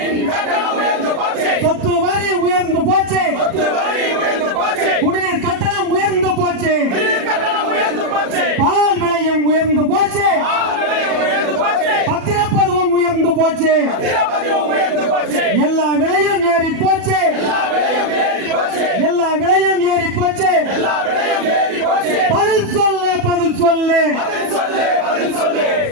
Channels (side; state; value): left; late; 37 ms